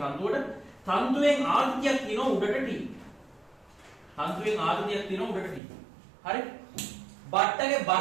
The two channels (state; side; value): drops out; left; at 5.6 s